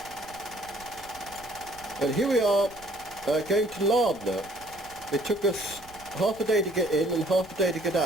And here we are going to Lardner. It took us half a day to get in and half a day to get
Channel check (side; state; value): right; noise; rumble, 24 dB below the sound